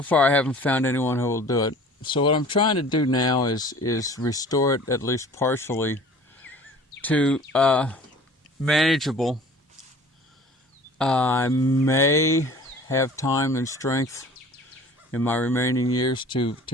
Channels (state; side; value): normal; both; correlation 0.46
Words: far I haven't found anyone who will do it. So what I'm trying to do now is restore it, at least partially, to manageable. I may have time and strength in my remaining years to